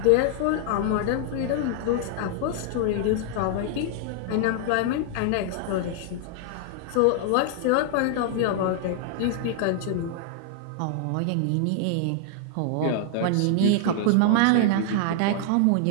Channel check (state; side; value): different; both; correlation 0.00